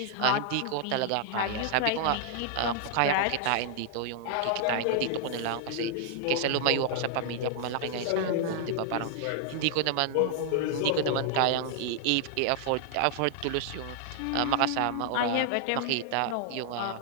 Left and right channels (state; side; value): different; both; correlation 0.00